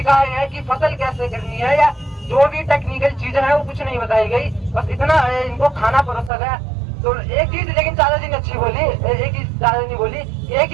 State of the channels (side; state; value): left; drops out; at 6.3 s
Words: कि फसल कैसे करनी है या जो भी टेक्निकल चीजें हैं वो कुछ नहीं बताई गई, बस इतना इनको खाना परोसा गया। तो एक चीज लेकिन चाचा जी ने अच्छी बोली, एक चीज चाचा जी बोली, एक